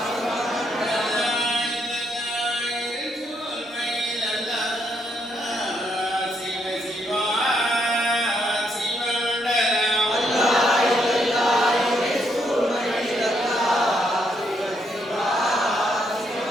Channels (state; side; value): normal; both; correlation 0.75